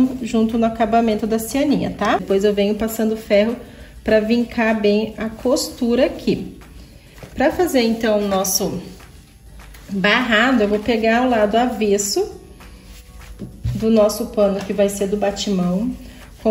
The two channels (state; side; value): identical; both; correlation 1.00